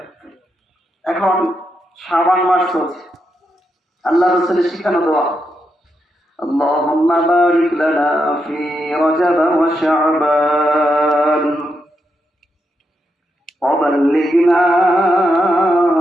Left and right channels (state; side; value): normal; both; correlation 0.83